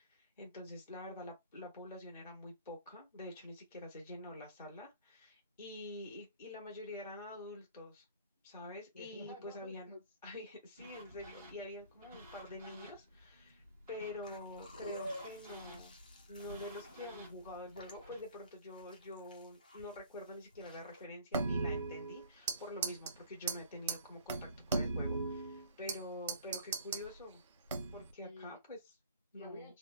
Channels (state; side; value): inverted; both; correlation -0.51